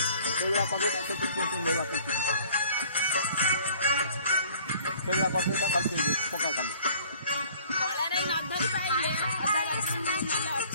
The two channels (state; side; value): inverted; both; correlation -0.54